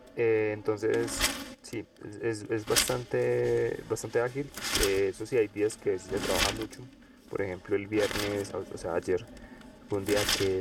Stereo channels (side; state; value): both; identical; correlation 1.00